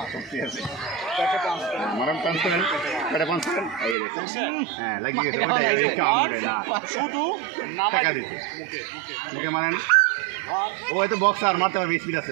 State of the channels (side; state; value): left; drops out; at 4.0 s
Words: ও তো বক্সার মারতে পারবে, স্পিড